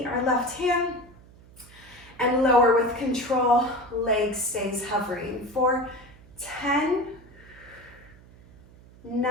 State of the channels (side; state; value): right; noise; hum, 23 dB below the sound